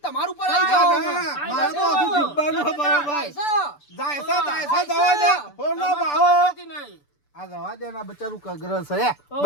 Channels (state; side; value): late; right; 6.9 ms